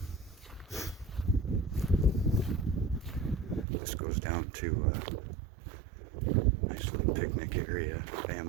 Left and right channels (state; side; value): drops out; left; at 3.7 s